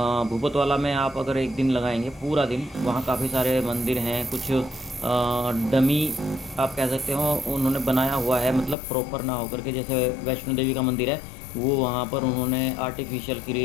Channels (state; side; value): drops out; right; at 8.8 s